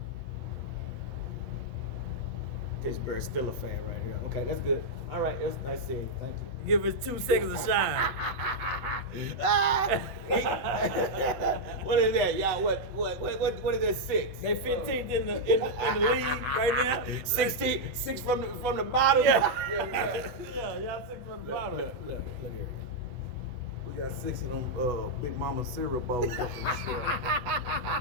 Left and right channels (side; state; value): left; late; 8.0 ms